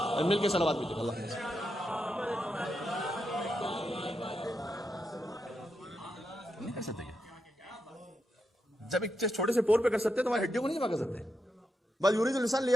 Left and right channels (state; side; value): normal; both; correlation 0.85